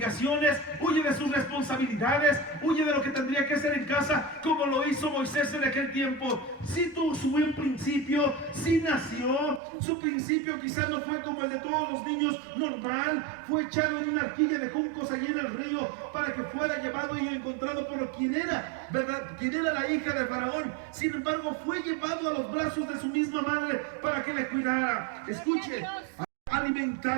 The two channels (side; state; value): left; drops out; at 9.6 s